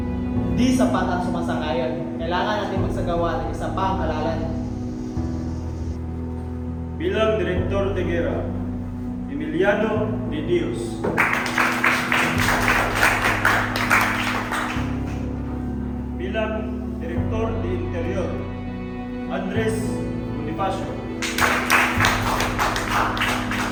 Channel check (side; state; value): both; identical; correlation 1.00